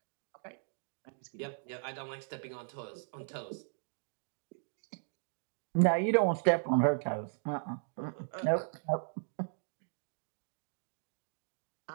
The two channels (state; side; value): silent; left; digital silence